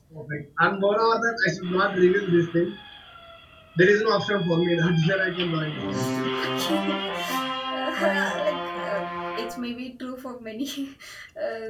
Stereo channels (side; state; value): both; identical; correlation 1.00